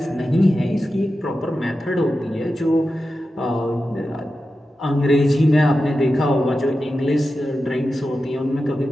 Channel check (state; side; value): normal; both; correlation 0.91